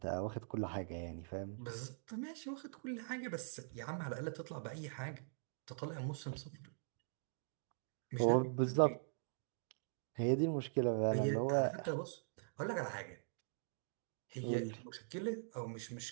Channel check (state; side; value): silent; left; digital silence